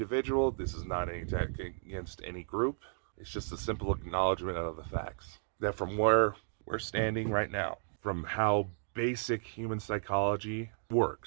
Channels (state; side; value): silent; left; digital silence